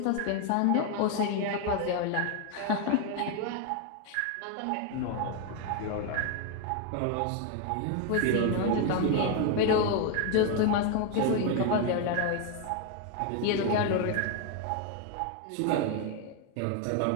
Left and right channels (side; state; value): both; different; correlation 0.01